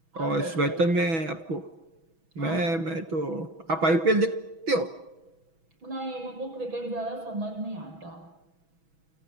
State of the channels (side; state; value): left; late; 6.1 ms